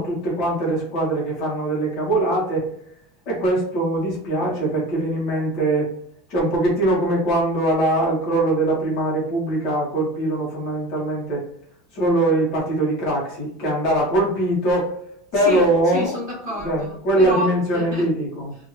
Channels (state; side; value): normal; both; correlation 0.36